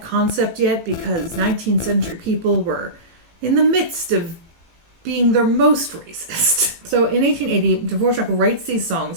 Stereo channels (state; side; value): late; left; 18 ms